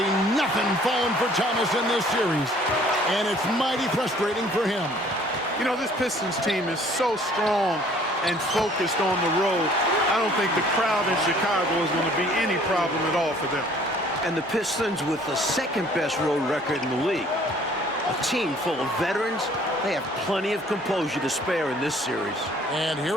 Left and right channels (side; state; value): both; normal; correlation 0.56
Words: nothing falling for Thomas in this series. And it's mighty frustrating for him. You know, this Pistons team is so strong and focused on the road. I don't think the crowd in Chicago is going to be any problem at all for them. And the Pistons with the second-best road record in the league. A team full of veterans. They have plenty of composure to spare in this series. And